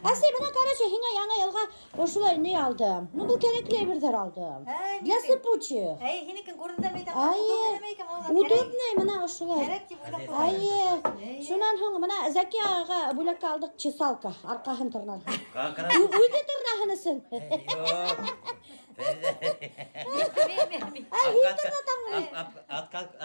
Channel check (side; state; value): both; inverted; correlation -1.00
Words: Әсей, бұна, короче, хиңа яңа елға ошылай не алдым? Ну, бұл керекли бірдер алдым. Для сыпучих. Хинекін көрді мейдам. Удобный, мұна ошылай. Шунан хоң, мұна Зәке аға бүләкке алдық чесалка, арқағын тұрнан. Үйді тұрнағынысың.